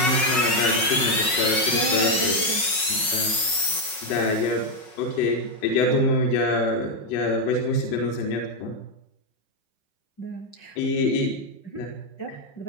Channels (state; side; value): late; right; 5.4 ms